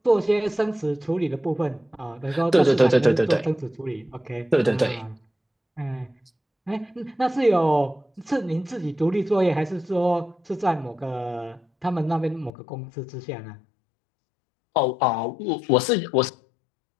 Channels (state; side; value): drops out; right; at 12.5 s